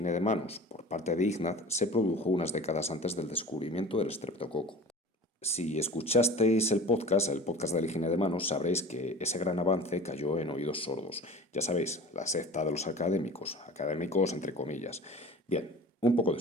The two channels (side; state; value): both; normal; correlation 0.39